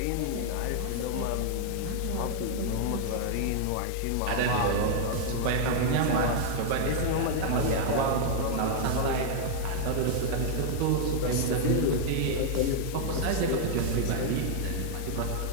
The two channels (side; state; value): both; different; correlation 0.00